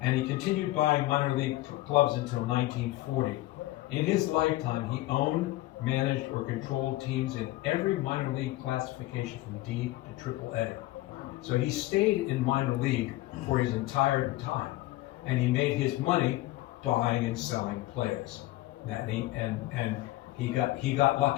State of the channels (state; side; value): quieter; right; 17.6 dB